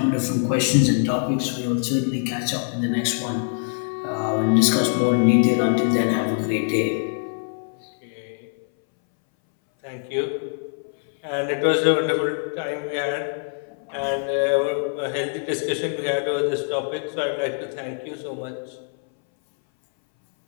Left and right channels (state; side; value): silent; right; 61 dB below the other